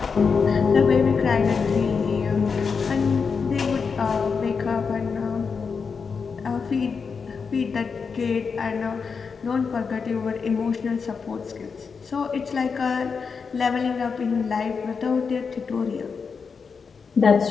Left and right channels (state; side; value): quieter; right; 5.5 dB